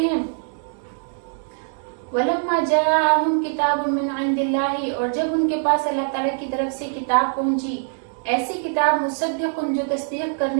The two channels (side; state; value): left; silent; digital silence